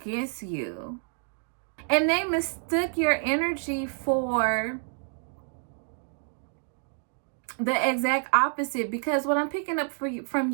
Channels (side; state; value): left; silent; 57 dB below the other